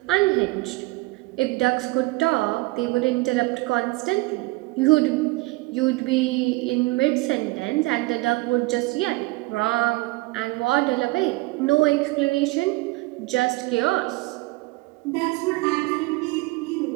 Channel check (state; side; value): quieter; left; 22.6 dB